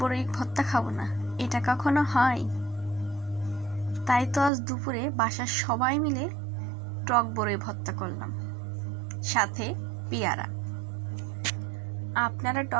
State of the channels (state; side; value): drops out; left; at 4.5 s